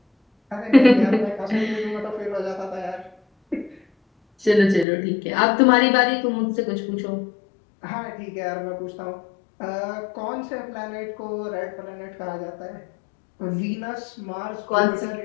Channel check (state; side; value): drops out; right; at 4.9 s